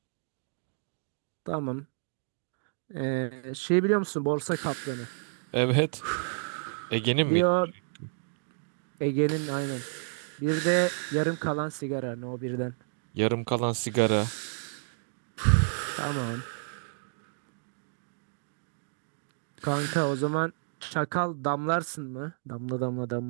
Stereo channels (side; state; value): left; silent; digital silence